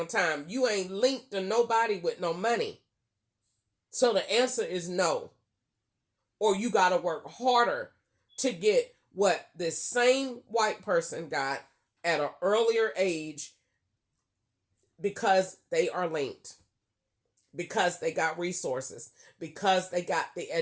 time. You ain't linked to nobody with no money. So the answer is no. Or you got to work harder to get what this same white person got at an earlier age, because they are linked, because they got resources, because they got the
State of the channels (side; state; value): both; identical; correlation 1.00